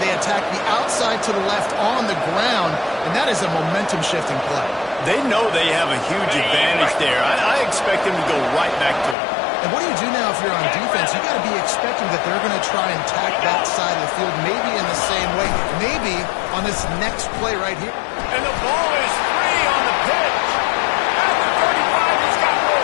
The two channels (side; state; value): right; drops out; at 9.2 s